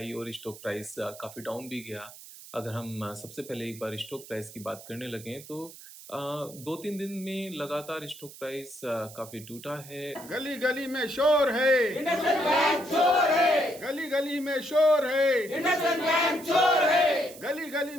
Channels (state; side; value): noise; right; hiss, 17 dB below the sound